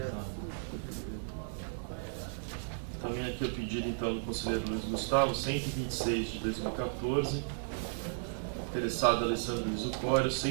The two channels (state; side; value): silent; left; digital silence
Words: Também aqui o pedido então do conselheiro Luiz Gustavo, 126 de 2014, interessado Alessandro Luiz Ucório,